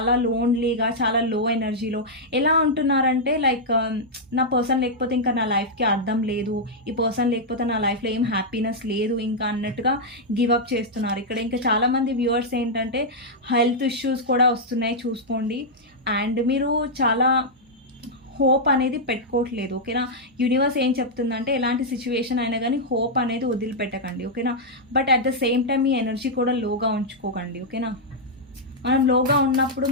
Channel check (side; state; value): both; normal; correlation -0.06